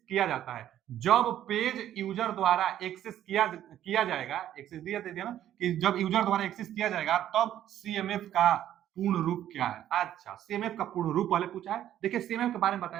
किया जाता है। जब पेज यूजर द्वारा एक्सेस किया जाएगा, एक्सेस दिया ना कि जब यूजर द्वारा एक्सेस किया जाएगा तब सीएमएफ का पूर्ण रूप क्या है? अच्छा, सीएमएफ का पूर्ण रूप पहले पूछा है। देखिए सीएमएफ के बारे में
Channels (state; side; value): quieter; left; 11.7 dB